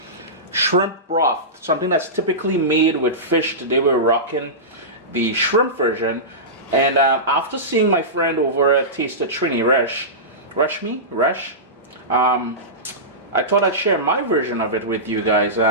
Shrimp broth, something that's typically made with fish. Today we're rocking the shrimp version. And after seeing my friend over at Taste of Trini, Resh, I thought I'd share my version of it with you guys.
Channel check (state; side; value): normal; both; correlation -0.18